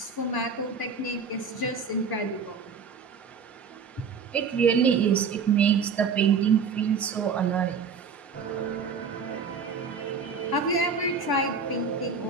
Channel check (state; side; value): quieter; left; 5.5 dB